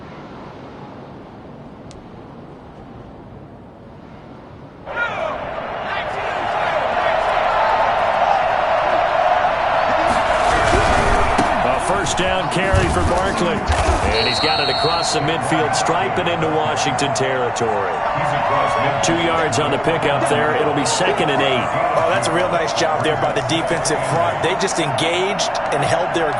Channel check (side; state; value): both; identical; correlation 1.00